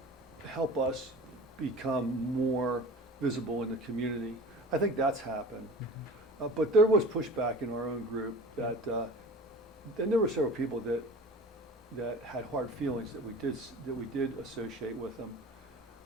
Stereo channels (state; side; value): normal; both; correlation 0.39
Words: help us become more visible in the community. I think that's happened. But there was pushback in our own group that, and there were several people that had hard feelings that we did associate with them.